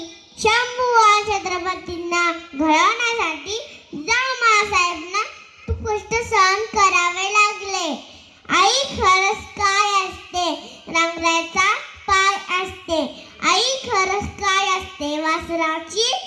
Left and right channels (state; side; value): identical; both; correlation 1.00